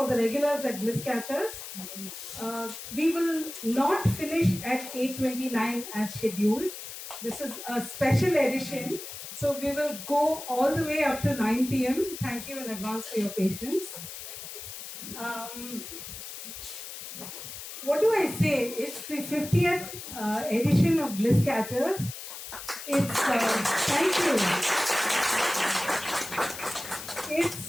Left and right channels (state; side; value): noise; left; hiss, 10 dB below the sound